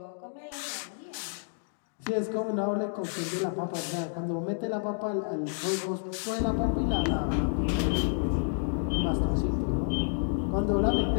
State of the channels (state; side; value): silent; right; digital silence